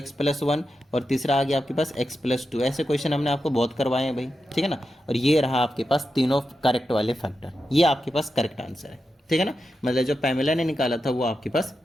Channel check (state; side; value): normal; both; correlation 0.89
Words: + 1, और तीसरा आ गया आपके पास x + 2। ऐसे क्वेश्चन हमने आपको बहुत करवाए हैं भाई, ठीक है ना। और ये रहा आपके पास तीनों करेक्ट वाले फैक्टर, ये आपके पास करेक्ट आंसर है, ठीक है ना। मतलब जो पैमेला ने निकाला था वो आपके पास